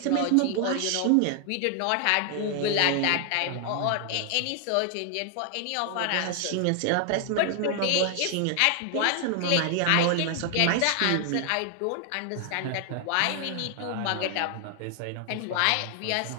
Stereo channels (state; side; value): different; both; correlation 0.00